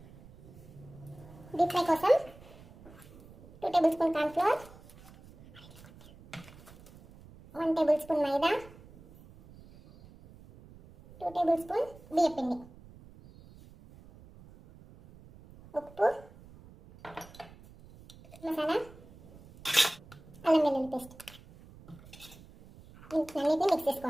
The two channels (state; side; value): noise; right; rumble, 21 dB below the sound